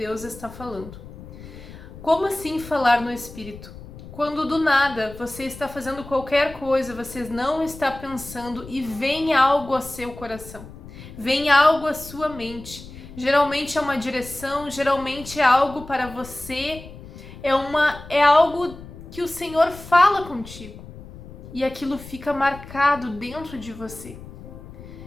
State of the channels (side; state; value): left; noise; rumble, 16 dB below the sound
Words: está falando. Como assim falar no Espírito? Quando do nada você está fazendo qualquer coisa, você não está pensando e vem algo a seu coração, vem algo à sua mente. Geralmente é uma direção, geralmente é algo para você, é algo que o Senhor fala contigo. E aquilo fica marcado dentro de você.